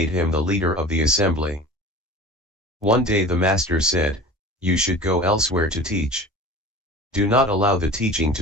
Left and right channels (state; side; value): normal; both; correlation 0.38